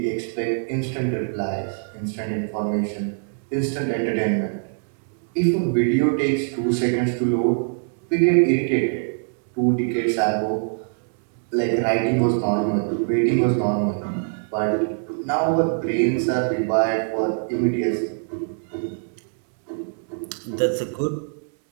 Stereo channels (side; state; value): left; silent; digital silence